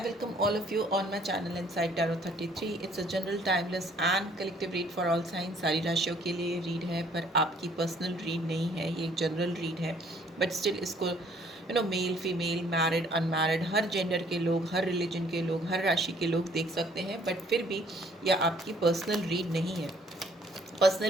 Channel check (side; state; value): both; normal; correlation 0.60